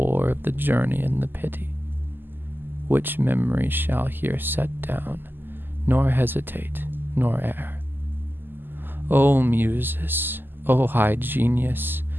of the journey and the pity, which memory shall here set down, nor hesitate, nor err. O Muses, O high genius,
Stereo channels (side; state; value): left; late; 0.093 ms